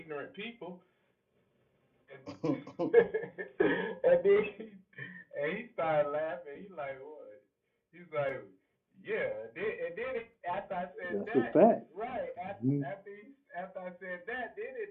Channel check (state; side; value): identical; both; correlation 1.00